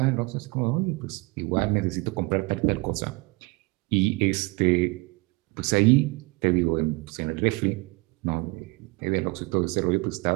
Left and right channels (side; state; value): left; quieter; 25.5 dB